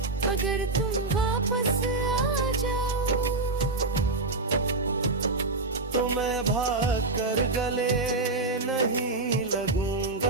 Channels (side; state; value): left; quieter; 3.2 dB